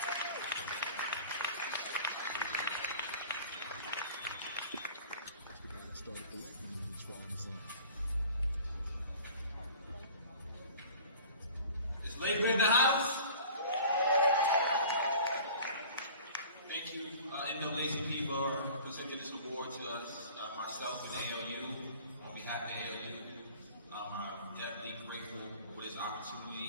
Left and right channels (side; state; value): both; inverted; correlation -0.45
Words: for Amazon. Is Labor in the house? Thank you, NAACP, for presenting this award to us, myself and ALU, on behalf of ALU. I'm definitely grateful for this